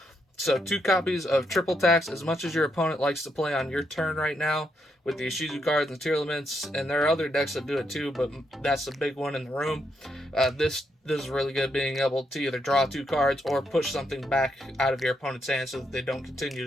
So 2 copies of Triple Tax. As much as your opponent likes to play on your turn right now with the Ishizu cards and Tearlaments, and there are other decks that do it too, but that's the big one in the room. This is really good, being able to either draw 2 cards or push something back out of your opponent's hand so that they don't continue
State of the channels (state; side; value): normal; both; correlation 0.79